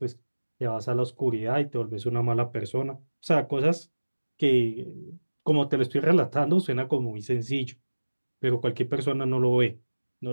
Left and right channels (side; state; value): both; inverted; correlation -1.00